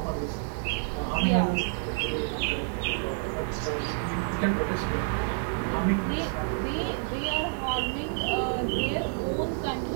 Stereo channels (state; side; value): silent; left; 59 dB below the other